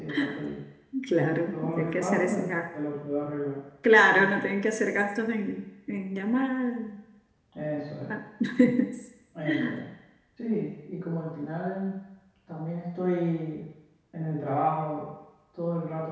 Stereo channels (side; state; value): both; identical; correlation 1.00